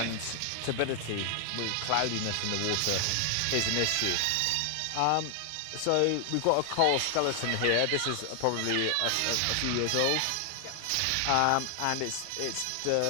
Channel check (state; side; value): different; both; correlation 0.00